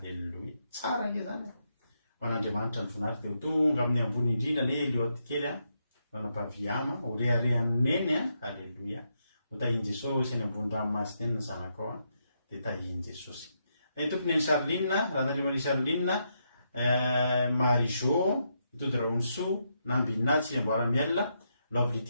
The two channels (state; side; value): inverted; both; correlation -0.81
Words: Tsara nge zany ho an'Andriamanitra ny voninahitra dia ho tonga amin'ny ambony indrindra ny Eliot kely ranam-paviama ho reharehan'ny neny. Halleloia. ho tahiny Jesosy any ambony ranomasina eny ny zanaka ao dia tahiny Jesosy. Tompony ny Charline ranandrimany Charline Marijo itody Raonso Nambina Tsiamboaramiel